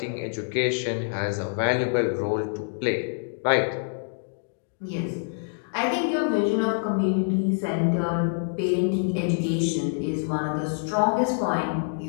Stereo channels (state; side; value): silent; right; digital silence